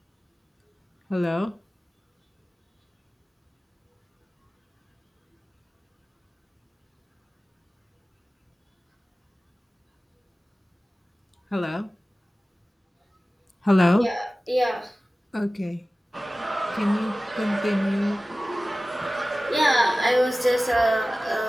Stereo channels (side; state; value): both; normal; correlation 0.97